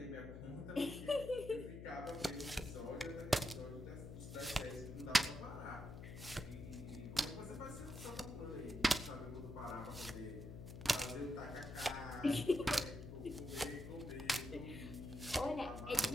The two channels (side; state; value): left; noise; hum, 10 dB below the sound